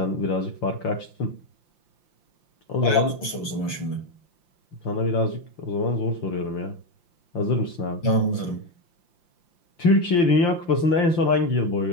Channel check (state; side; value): late; right; 5.8 ms